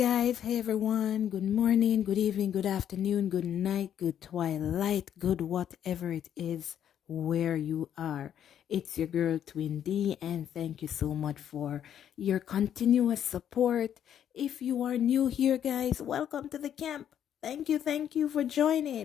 hey everyone, good morning, good evening, good afternoon, good night, good twilight, good whatever it is where you are. It's your girl Twin D, and thank you so much for your continuous support. If you are new here, guys, welcome to the camp. Thank you for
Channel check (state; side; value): quieter; right; 9.8 dB